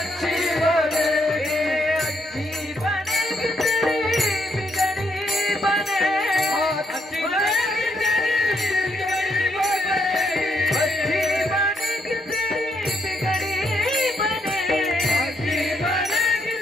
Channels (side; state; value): both; normal; correlation 0.76